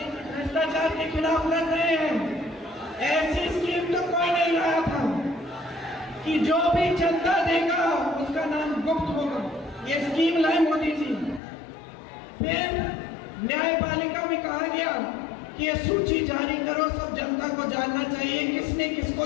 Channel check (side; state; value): right; drops out; at 11.4 s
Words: हैं कि भ्रष्टाचार के खिलाफ लड़ रहे हैं। ऐसी स्कीम तो कोई नहीं लाया था कि जो भी चंदा देगा उसका नाम गुप्त होगा। ये स्कीम लाए मोदी जी। फिर न्यायपालिका में कहा गया कि ये सूची जारी करो, सब जनता को जानना चाहिए किसने